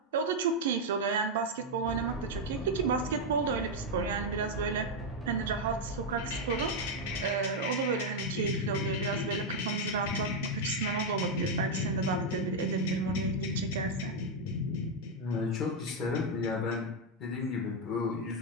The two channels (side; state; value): both; normal; correlation 0.01